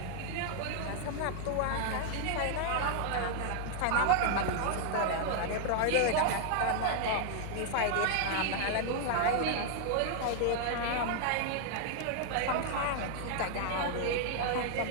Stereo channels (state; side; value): different; both; correlation 0.00